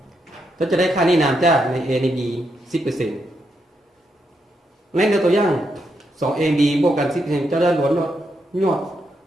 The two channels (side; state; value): both; normal; correlation 0.81